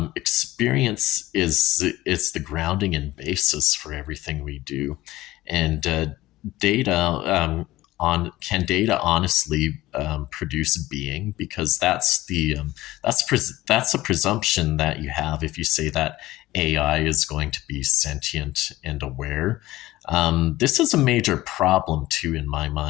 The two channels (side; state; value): right; quieter; 17.0 dB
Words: Experience is the grounding and basis for everything we do, and data on can data honestly produce being, because that's a presumption that you have if you say that AI is going to be sentient and aware. This is a major problem too in my